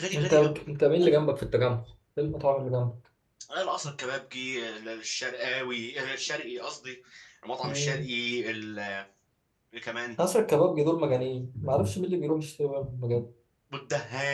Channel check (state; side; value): identical; both; correlation 1.00